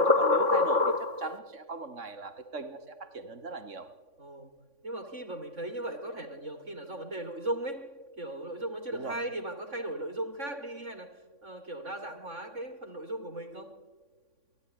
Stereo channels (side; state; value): left; late; 3.6 ms